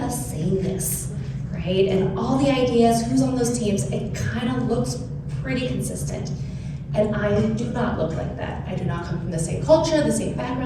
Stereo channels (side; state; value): both; identical; correlation 1.00